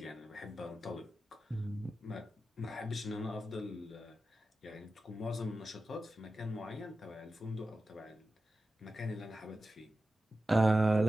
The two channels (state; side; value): normal; both; correlation 0.93